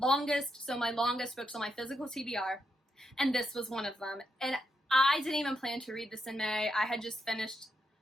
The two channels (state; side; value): normal; both; correlation 0.82